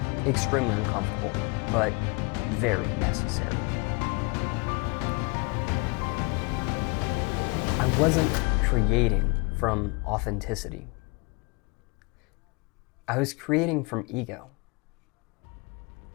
extremely uncomfortable, but very necessary. I wasn't creating from authenticity. I was creating from ego.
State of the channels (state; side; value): quieter; right; 30.5 dB